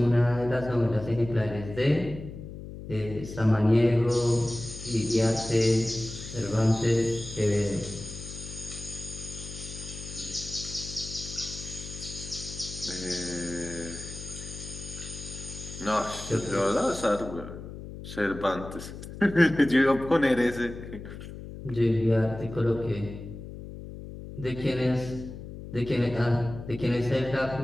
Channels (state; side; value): noise; left; hum, 11 dB below the sound